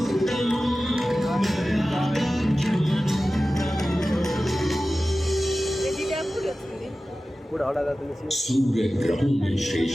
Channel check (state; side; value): normal; both; correlation 0.95